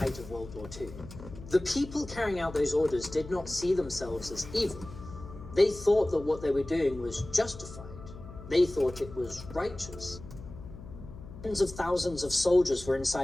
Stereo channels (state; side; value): noise; left; hum, 14 dB below the sound